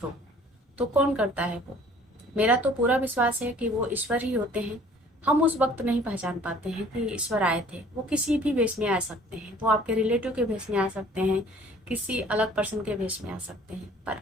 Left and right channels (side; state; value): both; normal; correlation 0.53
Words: तो कौन करता है वो? मेरा तो पूरा विश्वास है कि वो ईश्वर ही होते हैं। हम उस वक्त नहीं पहचान पाते हैं कि ईश्वर आए थे। वो किसी भी वेश में आ सकते हैं, वो आपके रिलेटिव के वेश में आ सकते हैं, किसी अलग पर्सन के वेश में आ सकते हैं, पर